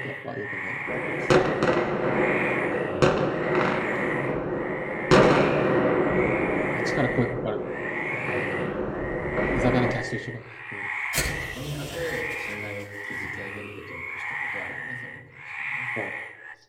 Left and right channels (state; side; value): identical; both; correlation 1.00